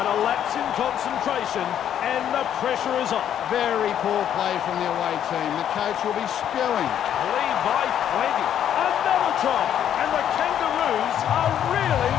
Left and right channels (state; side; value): quieter; right; 9.9 dB